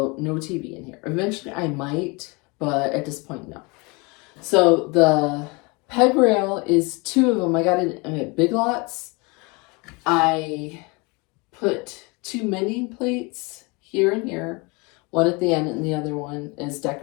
no TV in here. Eventually I might, but at this point, no. So the peg rail is 2 of them. I got it at Big Lots. I put 2 mending plates here and here, one at the end and the other one as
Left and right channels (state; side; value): quieter; right; 28.0 dB